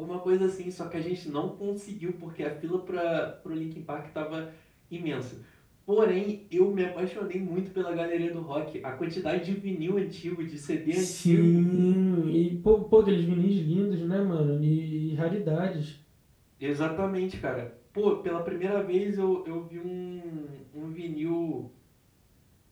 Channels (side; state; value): both; identical; correlation 1.00